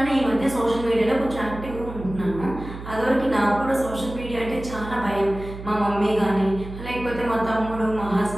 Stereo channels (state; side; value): noise; right; hum, 11 dB below the sound